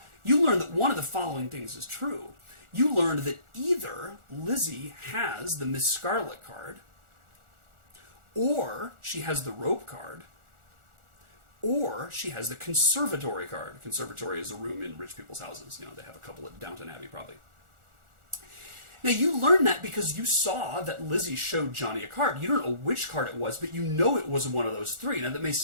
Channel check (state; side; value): late; left; 1.4 ms